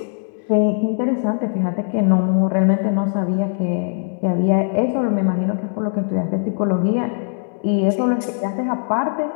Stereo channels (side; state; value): right; silent; 66 dB below the other